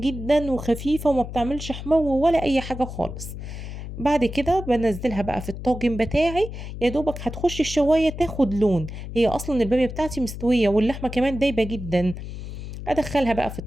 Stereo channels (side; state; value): left; noise; hum, 9 dB below the sound